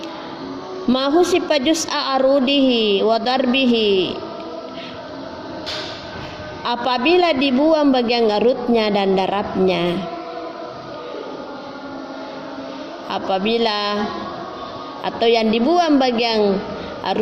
ma husifa juz'a arudihi wa darbihi, apabila dibuang bagian arutnya dan darabnya. Atau yang dibuang bagian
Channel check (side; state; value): both; identical; correlation 1.00